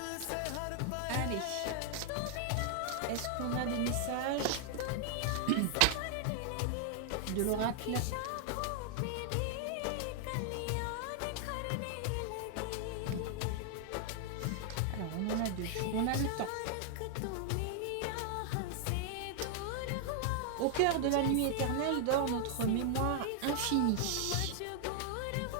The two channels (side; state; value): both; different; correlation 0.00